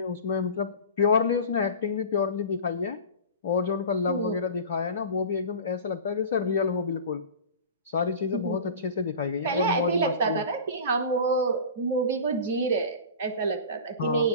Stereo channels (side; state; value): both; inverted; correlation -0.35